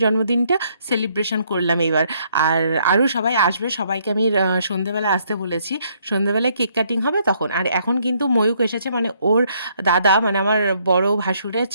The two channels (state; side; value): inverted; both; correlation -0.69